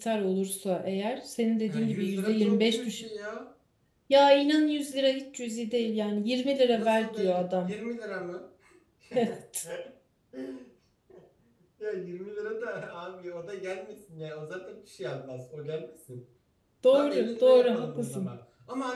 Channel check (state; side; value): identical; both; correlation 1.00